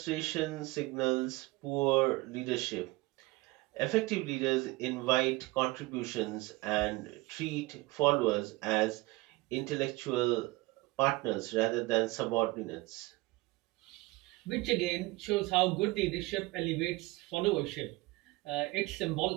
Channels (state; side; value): quieter; left; 21.6 dB